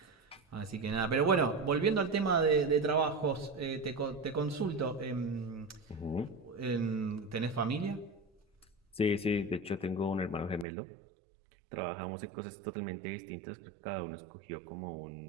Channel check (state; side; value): drops out; left; at 10.7 s